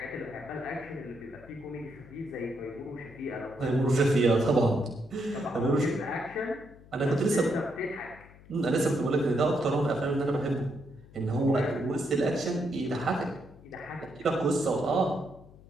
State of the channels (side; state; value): left; noise; hum, 22 dB below the sound